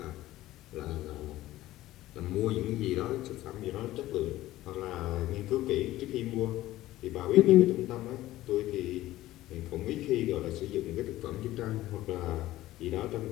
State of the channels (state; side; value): quieter; right; 15.8 dB